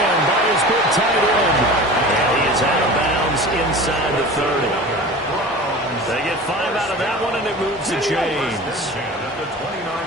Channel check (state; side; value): normal; both; correlation 0.36